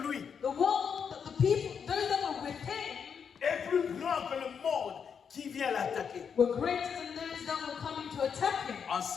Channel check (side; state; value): right; quieter; 6.9 dB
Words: lui The world, the people, those that were with him, est plus grand que le monde qui vient l'attaquer. were greater than those that were coming to attack him. En